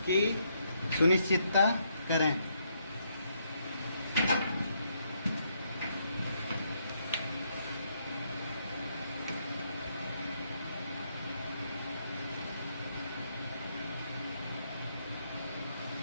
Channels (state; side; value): inverted; both; correlation -0.75